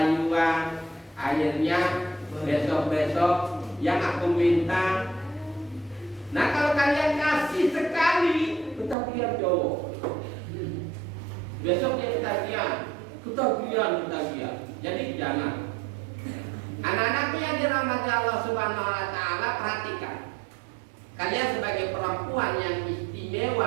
akhirnya besok-besok yang aku minta. Nah, kalau kalian kasih sekali, ketagihan cowok. Besok dia ketagihan. Jadi jangan. Anak-anakku yang dirahmati Allah Subhanahu wa taala, perhatikan. Kalian sebagai perempuan yang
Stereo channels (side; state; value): left; drops out; at 9.0 s